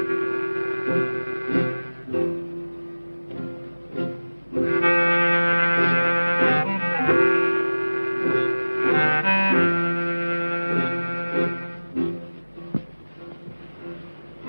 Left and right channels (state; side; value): inverted; both; correlation -1.00